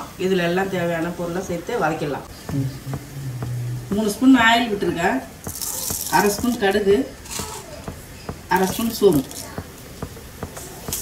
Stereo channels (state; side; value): identical; both; correlation 1.00